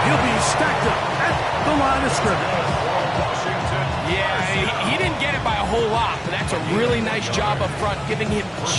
he'll be stacked up at the line of scrimmage. Yeah, he didn't get it by a whole lot, but that's a really nice job up front, giving him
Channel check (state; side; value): identical; both; correlation 1.00